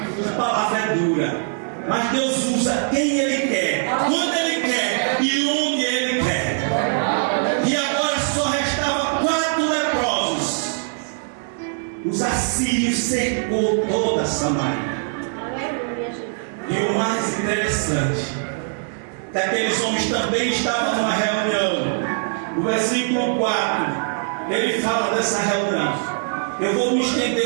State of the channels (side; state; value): left; silent; digital silence